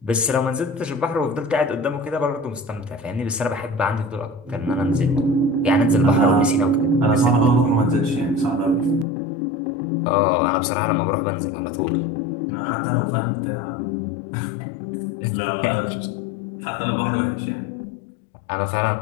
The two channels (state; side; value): drops out; right; at 9.1 s